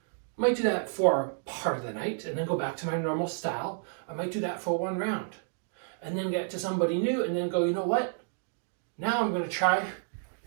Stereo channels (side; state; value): left; silent; digital silence